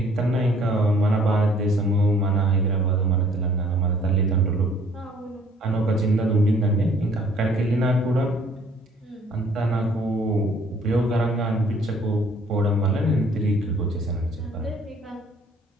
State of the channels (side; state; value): both; normal; correlation 0.58